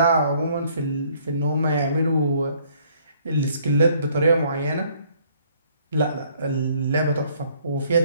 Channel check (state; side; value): inverted; both; correlation -0.62